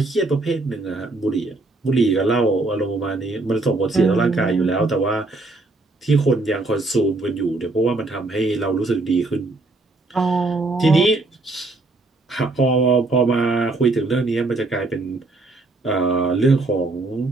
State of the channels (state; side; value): quieter; left; 3.1 dB